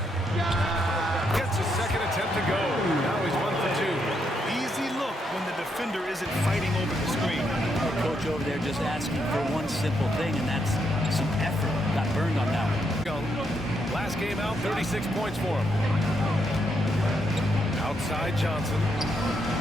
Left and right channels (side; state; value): both; normal; correlation 0.78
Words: Gets a second attempt to go. Now he's 1 for 2. Easy look when the defender isn't fighting over the screen. The coach over there just asking for one simple thing, and that's some effort. Got burned on that one. Young. Last game out, 36 points for him. Outside Johnson.